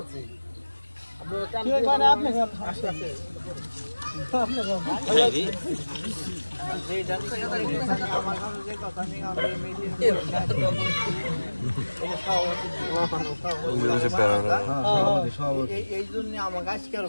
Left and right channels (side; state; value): both; inverted; correlation -1.00